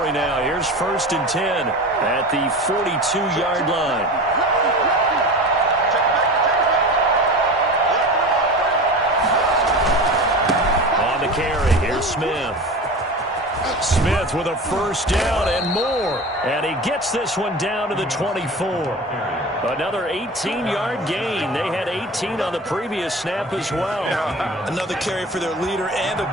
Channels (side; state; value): both; normal; correlation 0.32